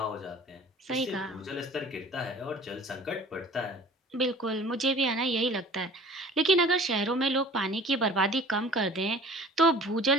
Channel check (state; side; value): normal; both; correlation 0.46